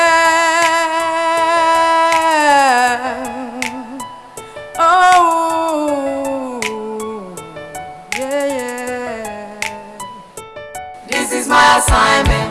Oh yeah. This is my assignment.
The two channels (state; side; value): identical; both; correlation 1.00